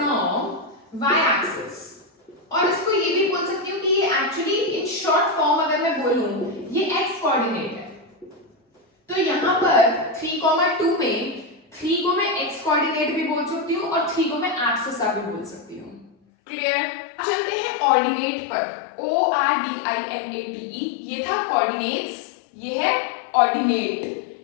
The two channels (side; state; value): right; drops out; at 16.1 s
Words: y axis. और इसको ये भी बोल सकती हूँ कि ये एक्चुअली इन शॉर्ट फॉर्म अगर मैं बोलूं, ये x कोऑर्डिनेट है, तो यहां पर 3,2 में 3 को मैं x कोऑर्डिनेट भी बोल सकती हूँ, और 3 को मैं एब्सिसा भी बोल सकती हूँ। क्लियर? चलते हैं ऑर्डिनेट पर। ORDINATE, ये था कोऑर्डिनेट्स, ये है ऑर्डिनेट।